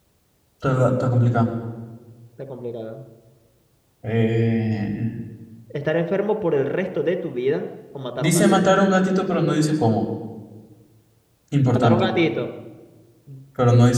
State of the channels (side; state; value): both; identical; correlation 1.00